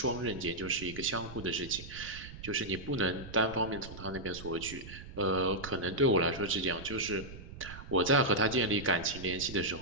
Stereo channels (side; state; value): right; noise; rumble, 14 dB below the sound